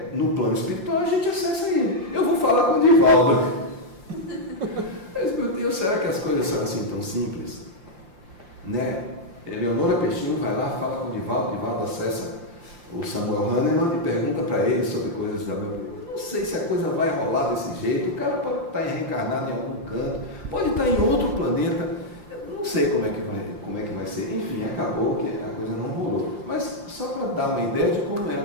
no plano espiritual, a gente acessa ele. Eu vou falar com o Divaldo. Mas, meu Deus, será que as coisas são assim tão simples? Né? Eleonora Peixinho vai lá, fala com o Divaldo acessa o Samuel Hahnemann e pergunta para ele sobre coisas da meu. Não sei se a coisa vai rolar desse jeito. O cara pode estar reencarnado em algum canto, pode estar em outro planeta. Eu não sei como é que vai ser. Enfim, acabou que a coisa não rolou. Mas só para dar uma ideia de como é a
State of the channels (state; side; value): late; left; 5.7 ms